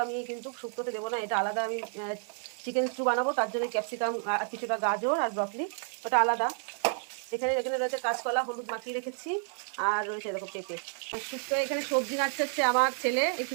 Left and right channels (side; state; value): left; silent; 56 dB below the other